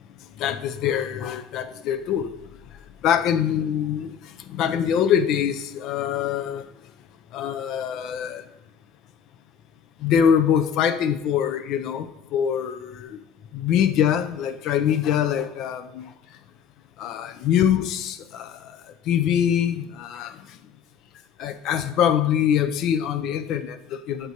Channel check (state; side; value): quieter; right; 8.6 dB